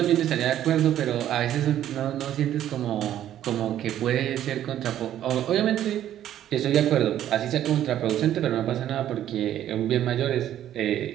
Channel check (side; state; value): left; quieter; 11.6 dB